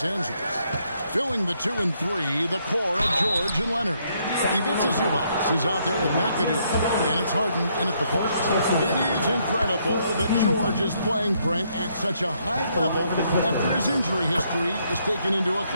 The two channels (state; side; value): inverted; both; correlation -0.72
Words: Angeles. Filling the 2 and 3, the core of George and Leonard. Ivica Zubats is out there with McAdoo, and it's Harden in at the post. It is incredible that George is playing Brent at such a high level after his injury history is taken into